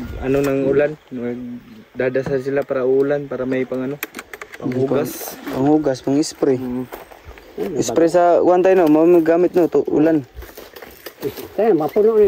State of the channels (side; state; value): both; identical; correlation 1.00